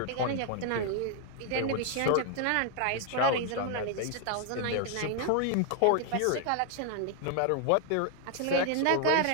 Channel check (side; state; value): both; different; correlation 0.00